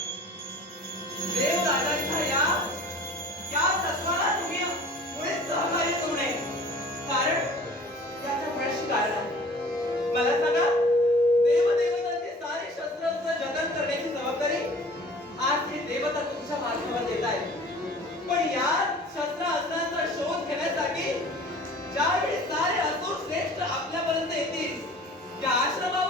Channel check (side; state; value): both; normal; correlation 0.46